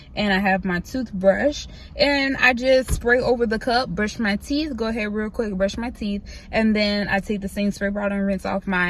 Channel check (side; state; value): both; identical; correlation 1.00